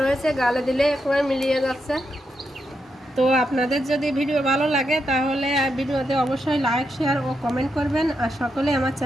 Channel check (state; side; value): normal; both; correlation 0.84